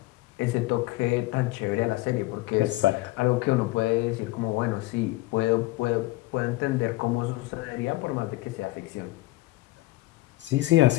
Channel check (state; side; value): quieter; right; 19.3 dB